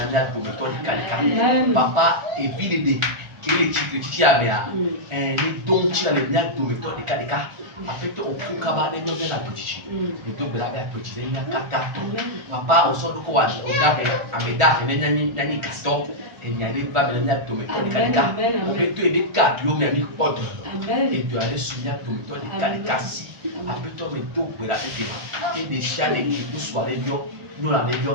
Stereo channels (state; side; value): late; left; 1.4 ms